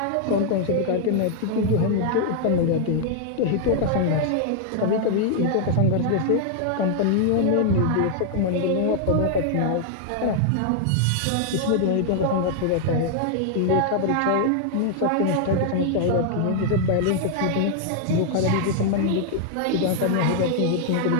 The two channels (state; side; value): different; both; correlation 0.00